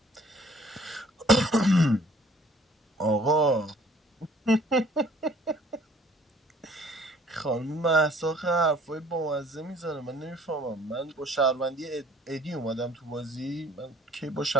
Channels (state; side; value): normal; both; correlation 0.56